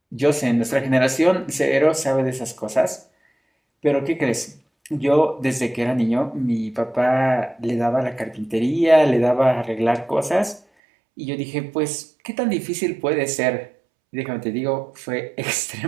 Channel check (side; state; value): left; drops out; at 10.6 s